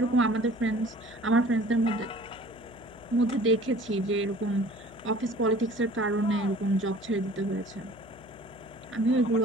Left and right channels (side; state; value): left; noise; hum, 20 dB below the sound